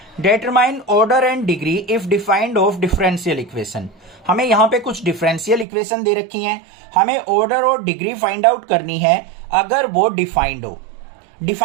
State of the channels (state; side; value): drops out; left; at 5.7 s